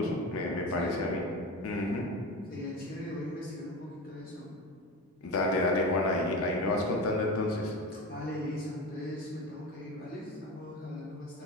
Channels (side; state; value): both; normal; correlation 0.26